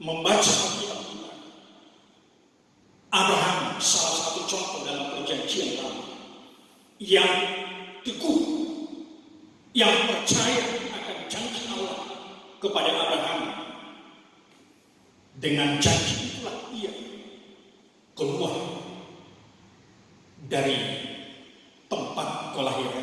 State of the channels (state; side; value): identical; both; correlation 1.00